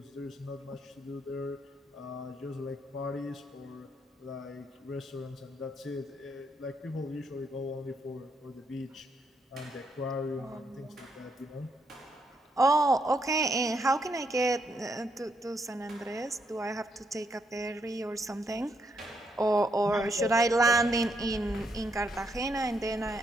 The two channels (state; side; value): normal; both; correlation 0.76